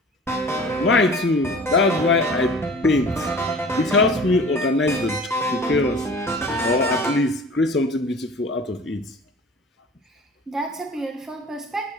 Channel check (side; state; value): both; normal; correlation 0.43